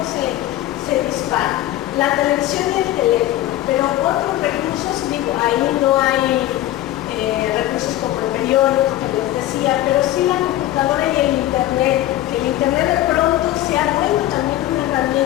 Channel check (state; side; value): quieter; right; 14.5 dB